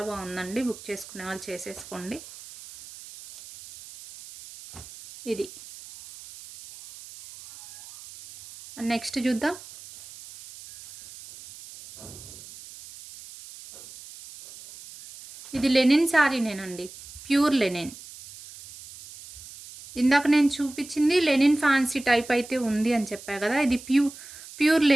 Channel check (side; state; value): right; noise; hiss, 17 dB below the sound